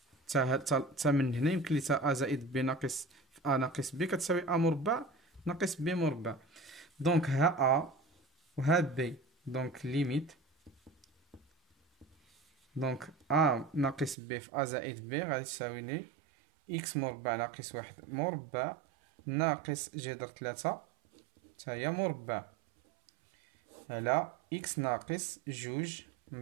تا من هنا يمكن لي تا ا زائد ب ناقص في ا ناقص ب كتساوي ا مربع ناقص ب مربع. دونك ها ا وها ب، دونك ليميت. دونك ا ناقص ب في ا زائد ب غادي تساوي لي اكس مربع ناقص واحد مربع ناقص جذر 3 تا هي مربع على اكس ناقص جوج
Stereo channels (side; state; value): left; drops out; at 14.2 s